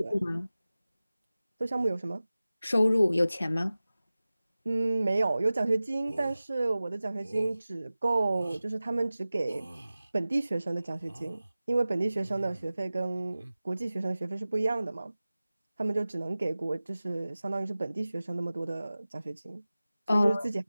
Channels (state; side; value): inverted; both; correlation -0.97